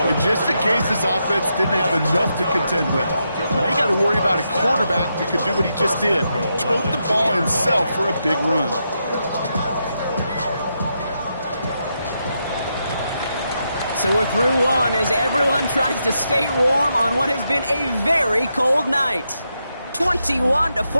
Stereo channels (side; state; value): both; inverted; correlation -0.83